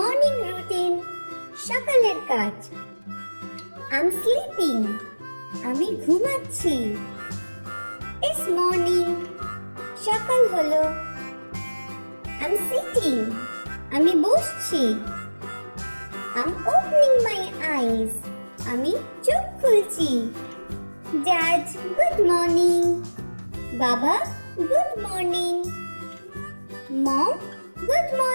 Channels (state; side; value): inverted; both; correlation -1.00